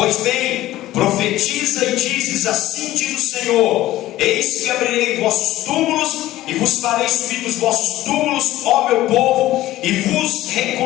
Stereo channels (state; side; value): quieter; right; 15.4 dB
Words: bem, profetiza e dizes: assim diz o Senhor, eis que abrirei vossos túmulos e vos farei subir dos vossos túmulos, ó meu povo, e vos